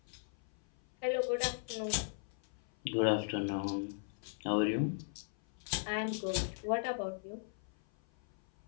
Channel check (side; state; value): right; silent; 53 dB below the other